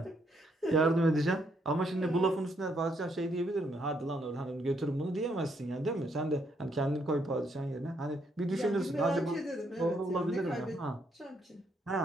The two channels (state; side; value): normal; both; correlation 0.73